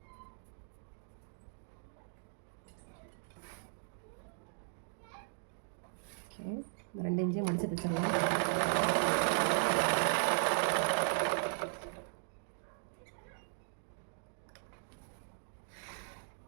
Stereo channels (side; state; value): left; silent; digital silence